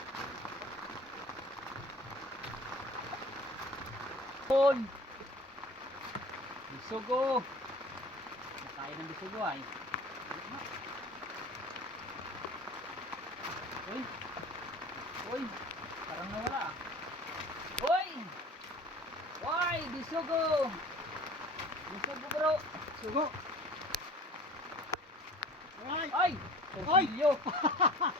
Pon. Bisugo. Kain ng bisugo ay. Uy. Uy. Parang nawala. Uy. Uy, bisugo. Bisugo bro. Sugo. Alright. Ay. Torsilyo.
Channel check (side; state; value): both; normal; correlation 0.44